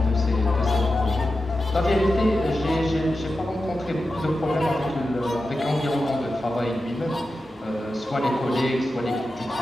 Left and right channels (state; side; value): normal; both; correlation 0.91